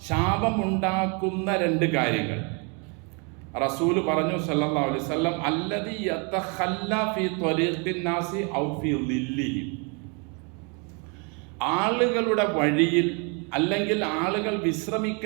ശാപം ഉണ്ടാക്കുന്ന 2 കാര്യങ്ങൾ? റസൂൽ പറഞ്ഞു സല്ലല്ലാഹു അലൈഹി വസല്ലം, അല്ലദി യതഖല്ല ഫീ ത്വരീഖിൻ നാസി ഔ ഫീ ളില്ലിഹിം, ആളുകളുടെ വഴിയിൽ അല്ലെങ്കിൽ ആളുകൾ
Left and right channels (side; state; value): left; quieter; 34.1 dB